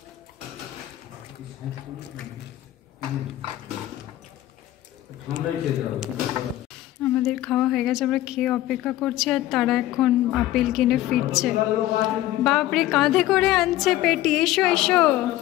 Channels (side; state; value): right; quieter; 14.9 dB